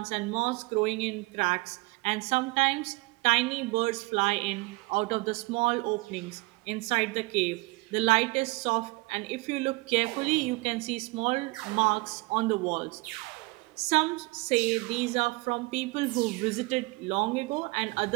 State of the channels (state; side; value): quieter; left; 24.9 dB